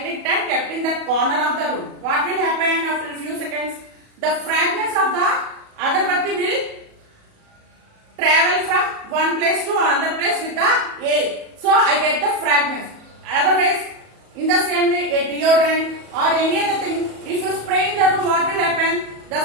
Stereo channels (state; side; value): late; left; 37 ms